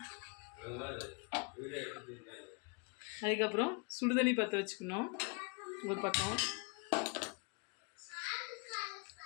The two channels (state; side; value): quieter; right; 33.4 dB